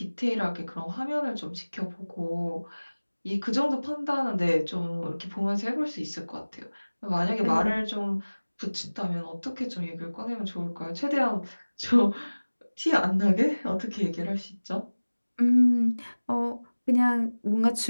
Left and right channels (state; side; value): inverted; both; correlation -1.00